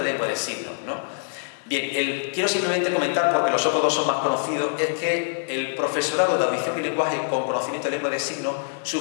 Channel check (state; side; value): silent; right; 56 dB below the other